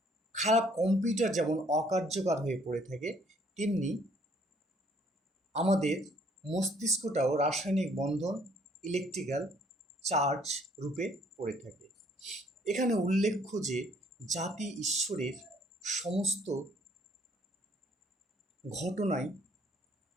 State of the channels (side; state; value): both; normal; correlation 0.62